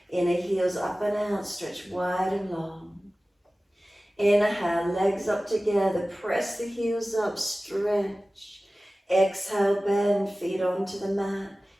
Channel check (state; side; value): normal; both; correlation 0.97